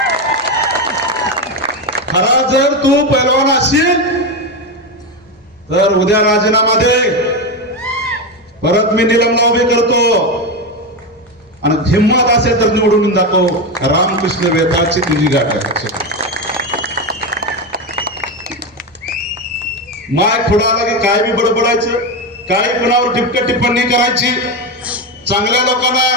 खरा जर तू पैलवान असशील तर उद्या राजीनामा दे. परत मी निलंबना उभी करतो. आणि हिंमत असेल तर निवडून दाखव. रामकृष्ण वेताळची तुझी गाठ आहे. माय पुढे आला की काय बी बडबडायचं, काय कुणावर टिपक्या टिप्पणी करायची, चांगल्या लोकांना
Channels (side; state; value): both; normal; correlation 0.14